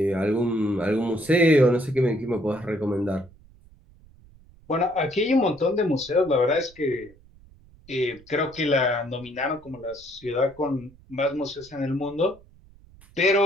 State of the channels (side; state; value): right; noise; rumble, 25 dB below the sound